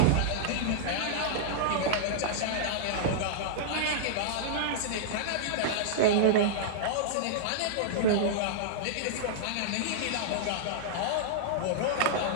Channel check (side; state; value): both; different; correlation -0.02